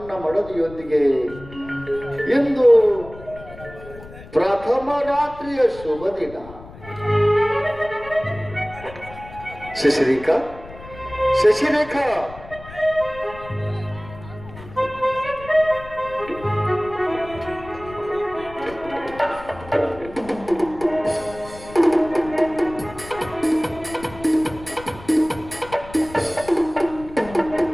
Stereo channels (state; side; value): noise; left; rumble, 17 dB below the sound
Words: ಮಡದಿಯೊಂದಿಗೆ ಇಂದು ಪ್ರಥಮ ರಾತ್ರಿಯ ಶುಭ ದಿನ. ಶಶಿರೇಖಾ, ಶಶಿರೇಖಾ,